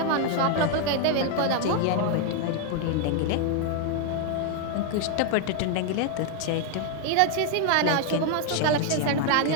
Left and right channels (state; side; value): different; both; correlation 0.00